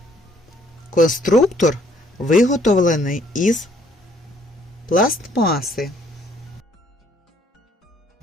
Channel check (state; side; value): normal; both; correlation 0.64